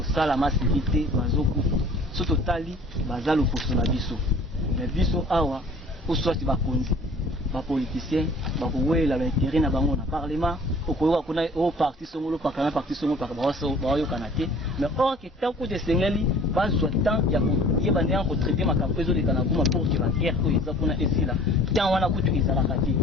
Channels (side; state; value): both; normal; correlation 0.49